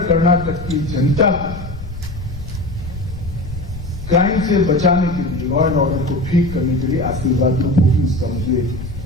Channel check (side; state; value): left; noise; rumble, 11 dB below the sound